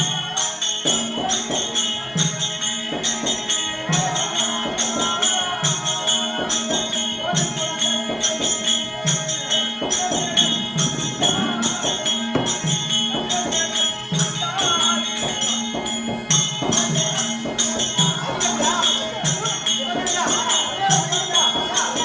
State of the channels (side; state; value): both; identical; correlation 1.00